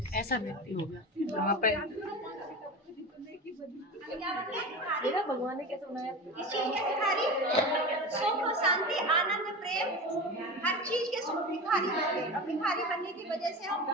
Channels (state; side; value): normal; both; correlation 0.28